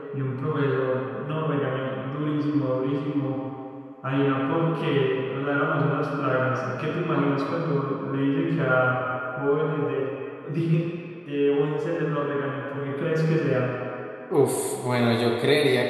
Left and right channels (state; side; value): identical; both; correlation 1.00